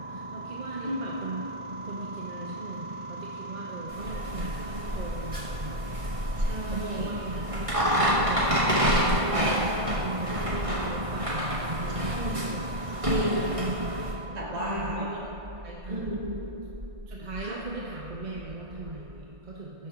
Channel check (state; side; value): late; left; 1.6 ms